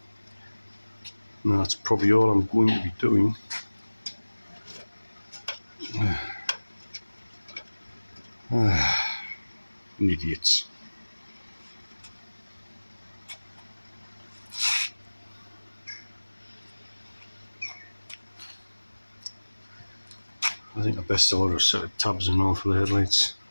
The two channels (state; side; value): inverted; both; correlation -1.00